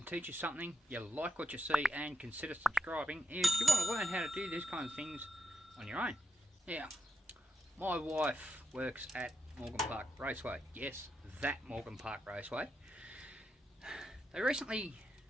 teach you something, you like what you see, and consider subscribing if you want to learn how to do these kind of things on your own. Now, my wife works at Morgan Park Raceway. Yes, that Morgan Park Raceway. They recently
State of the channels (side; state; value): both; normal; correlation 0.84